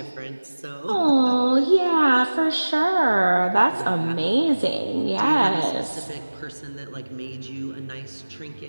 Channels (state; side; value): inverted; both; correlation -1.00